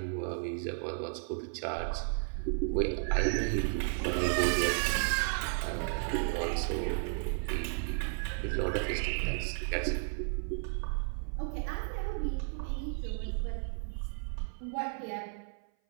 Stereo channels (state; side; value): silent; left; 55 dB below the other